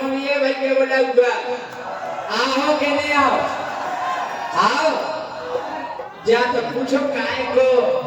घूमिए भाई के बोलबगा आओ के नहीं आओ जा तो पूछो काय को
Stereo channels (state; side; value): identical; both; correlation 1.00